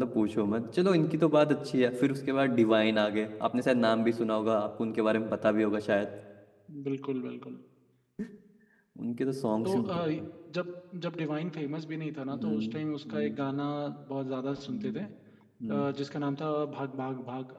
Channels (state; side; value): identical; both; correlation 1.00